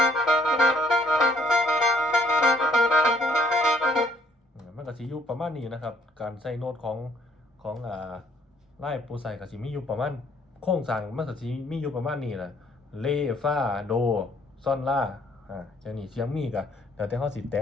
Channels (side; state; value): both; normal; correlation 0.63